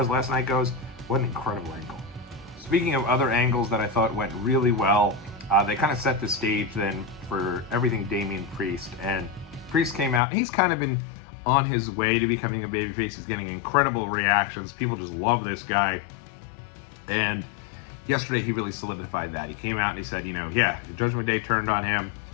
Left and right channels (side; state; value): right; drops out; at 10.2 s